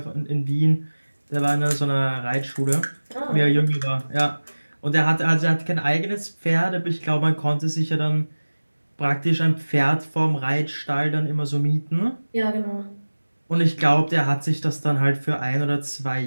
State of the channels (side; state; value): both; inverted; correlation -1.00